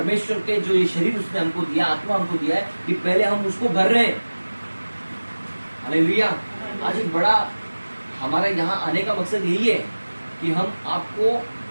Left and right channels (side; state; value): both; inverted; correlation -1.00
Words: के जो ये शरीर उसने हमको दिया, आत्मा हमको दिया है, कि पहले हम उसको भर रहे हैं? हालेलुया। आज एक बड़ा हमारा यहाँ आने का मकसद यही है कि हम आपको